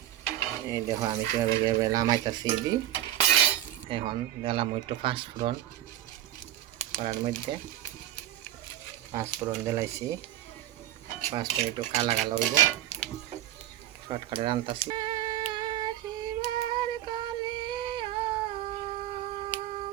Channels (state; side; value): quieter; left; 12.8 dB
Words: এই দেখো আমি কীভাবে নামাইতেছি দি। এখন দিলাম একটু পাঁচফোড়ন করার মধ্যে, পাঁচফোড়ন দিলাইছি, পাঁচফোড়ন একটু কালা কালা হইব, শর্টকাটে রান্তাছি।